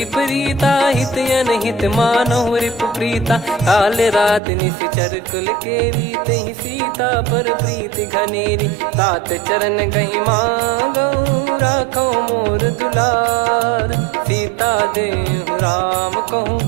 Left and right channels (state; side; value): drops out; left; at 4.4 s